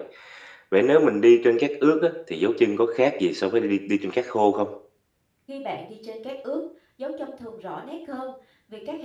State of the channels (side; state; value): both; identical; correlation 1.00